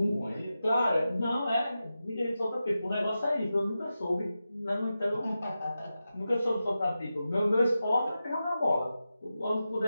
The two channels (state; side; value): inverted; both; correlation -0.91